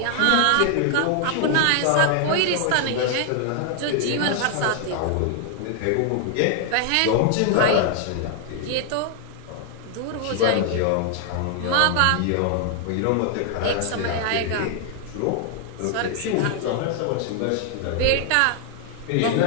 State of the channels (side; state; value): both; different; correlation 0.00